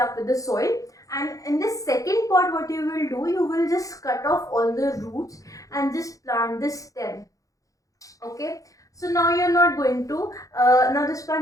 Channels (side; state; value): right; late; 0.16 ms